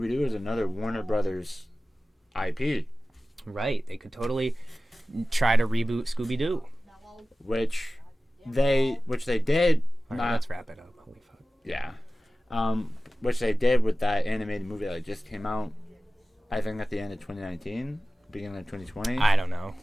is another Warner Brothers IP. Right. They could totally try to reboot Scooby-Doo. Which they did. All right, let's wrap it up. Holy fuck. Yeah. Which they did with that animated movie that just came out, I think at the end of 2019, beginning of 2020. I don't know.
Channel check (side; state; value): both; normal; correlation 0.96